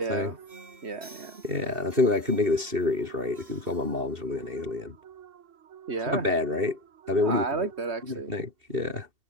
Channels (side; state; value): left; late; 2.7 ms